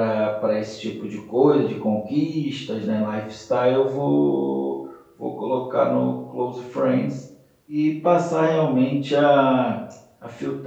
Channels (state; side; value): identical; both; correlation 1.00